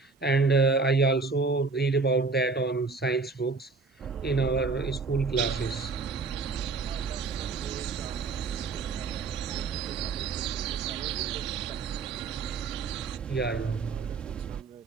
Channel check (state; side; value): quieter; left; 4.3 dB